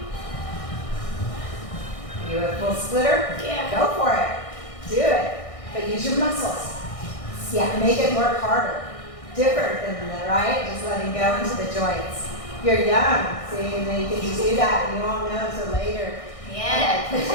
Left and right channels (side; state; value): right; late; 1.6 ms